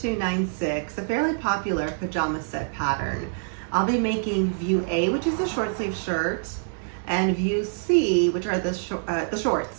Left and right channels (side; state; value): left; silent; 61 dB below the other